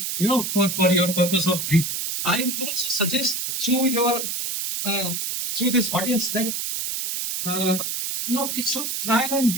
for your purpose of breeding. I would also suggest through this audience that we should try and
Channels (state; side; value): noise; right; hiss, 2 dB below the sound